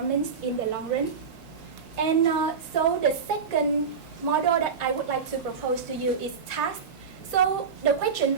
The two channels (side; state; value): left; quieter; 5.9 dB